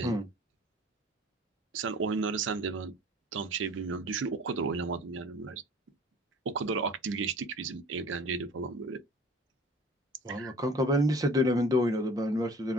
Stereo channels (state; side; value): normal; both; correlation 0.46